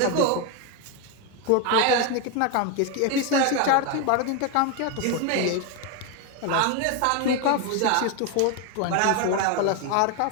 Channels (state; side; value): different; both; correlation 0.02